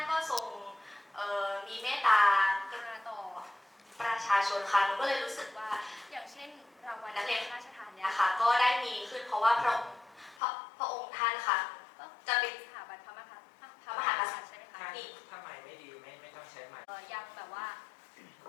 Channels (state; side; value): drops out; right; at 10.4 s